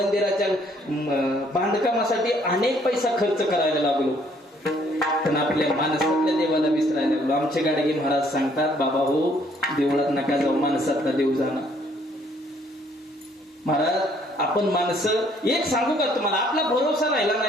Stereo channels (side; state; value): both; normal; correlation 0.64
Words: बांधकामासाठी अनेक पैसा खर्च करायला लागलो, पण आपल्या माणसातल्या देवाला विसरायला लागलो. आमचे गाडगे महाराज सांगतात, बाबा हो, देवळात नका जाऊ, माणसातला देव जाणार. महाराज आपण माणसं, एक सांगू का तुम्हाला, आपला भरोसा राहिला